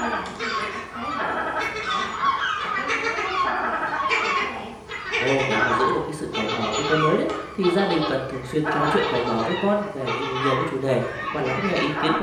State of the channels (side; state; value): both; identical; correlation 1.00